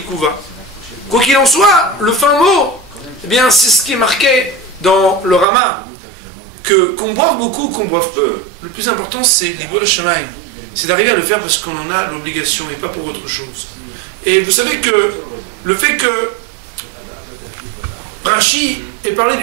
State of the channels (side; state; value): left; drops out; at 5.5 s